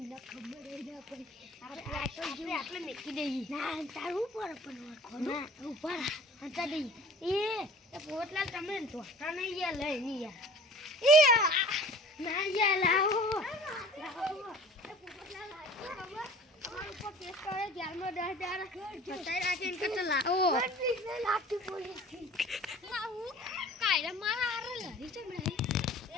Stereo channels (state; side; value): normal; both; correlation 0.45